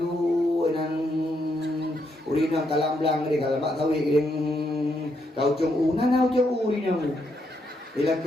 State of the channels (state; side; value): normal; both; correlation 0.78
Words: nang urinang kalam belang ni kalau mak tahu yang kau cung nana cung urinang. Bila